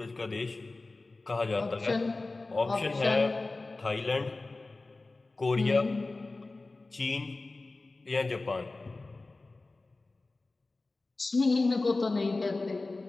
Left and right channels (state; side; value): quieter; right; 3.3 dB